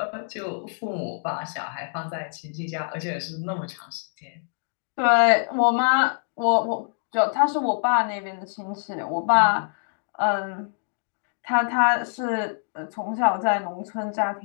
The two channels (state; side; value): silent; right; digital silence